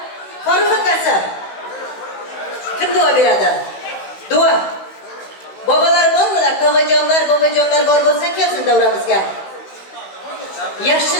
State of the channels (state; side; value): late; right; 16 ms